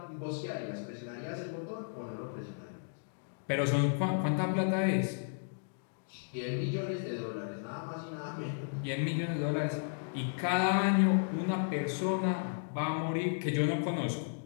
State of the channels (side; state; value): right; silent; digital silence